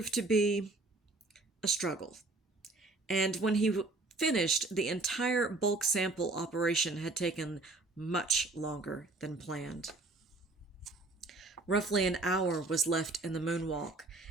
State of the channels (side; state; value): left; quieter; 3.2 dB